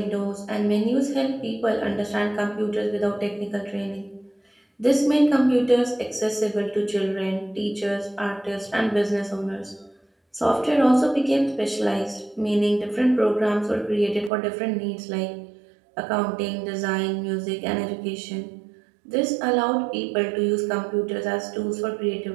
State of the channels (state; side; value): drops out; left; at 14.3 s